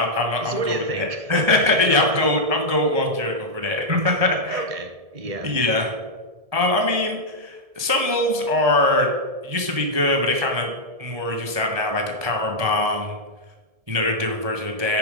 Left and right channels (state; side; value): late; left; 1.7 ms